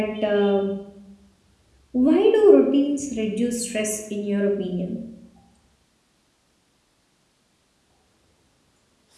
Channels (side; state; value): both; identical; correlation 1.00